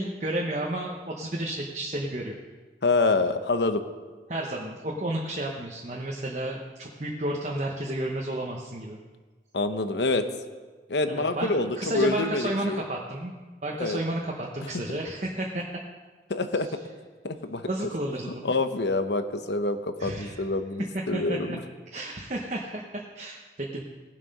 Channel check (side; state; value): both; normal; correlation 0.17